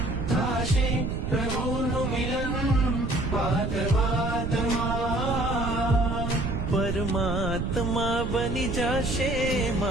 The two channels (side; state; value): right; noise; rumble, 3 dB below the sound